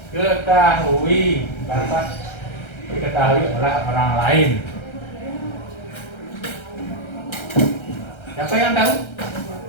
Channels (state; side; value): late; right; 1.3 ms